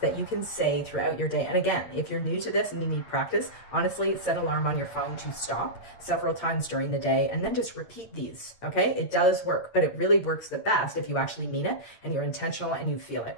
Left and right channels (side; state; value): right; late; 8.8 ms